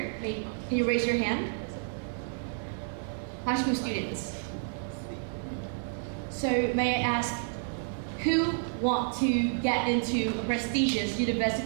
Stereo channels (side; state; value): left; silent; digital silence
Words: Can you raise your hand? High school students. So may I ask who want to get into a prestigious